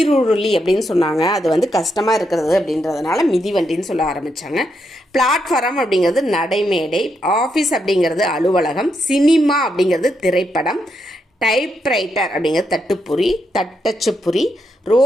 அப்படின்னு சொன்னாங்க, அது வந்து கஷ்டமாக இருக்கிறது அப்படின்றதுனால மிதிவண்டின்னு சொல்ல ஆரம்பித்தாங்க. பிளாட்ஃபாரம் அப்படிங்கிறது நடைமேடை, ஆஃபீஸ் அப்படிங்கிறது அலுவலகம், சினிமா அப்படிங்கிறது திரைப்படம், டைப்ரைட்டர் அப்படிங்கிறது தட்டச்சுப்புரி,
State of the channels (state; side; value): normal; both; correlation 0.81